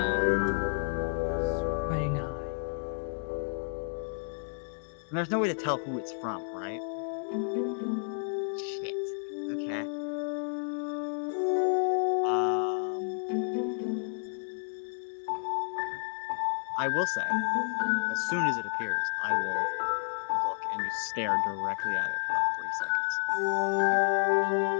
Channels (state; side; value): silent; right; digital silence